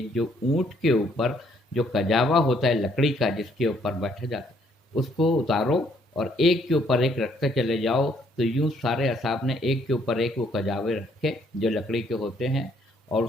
جو اونٹ کے اوپر جو کجاوا ہوتا ہے لکڑی کا، جس کے اوپر بیٹھا جاتا ہے، اس کو اتارو اور ایک کے اوپر ایک رکھتے چلے جاؤ۔ تو یوں سارے اصحاب نے ایک کے اوپر ایک وہ کجاوے رکھے جو لکڑی کے ہوتے ہیں، اور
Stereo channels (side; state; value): both; normal; correlation 0.67